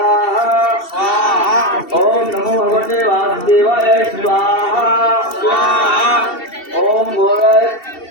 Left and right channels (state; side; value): late; right; 2.7 ms